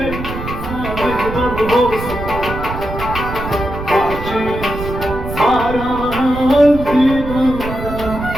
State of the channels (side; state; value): right; noise; rumble, 8 dB below the sound